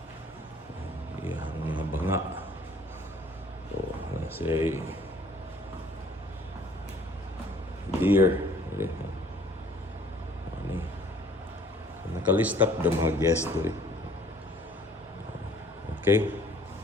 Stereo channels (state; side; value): normal; both; correlation 0.56